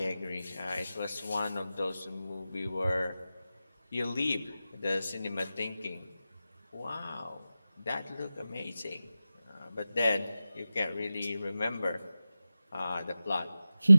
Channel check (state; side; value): inverted; both; correlation -0.94